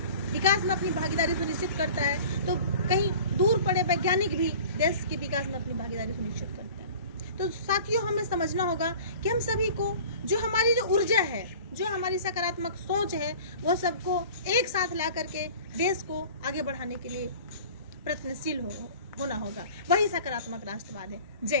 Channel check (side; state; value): both; inverted; correlation -0.43